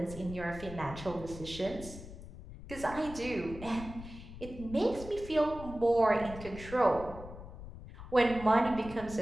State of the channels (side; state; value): left; noise; rumble, 13 dB below the sound